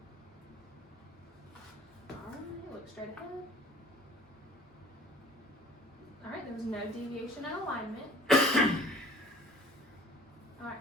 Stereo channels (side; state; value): both; normal; correlation 0.48